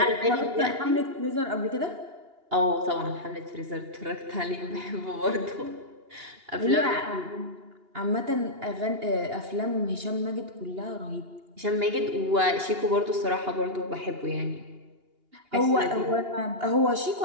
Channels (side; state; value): left; late; 2.8 ms